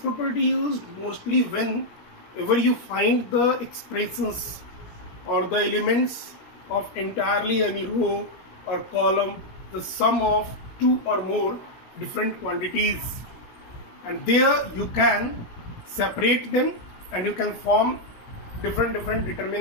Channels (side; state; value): right; late; 17 ms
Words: used mostly whenever you find the expressions or the elements of entirely any row or column, the sum of two or more different quantities, and there you can separate them and you can form different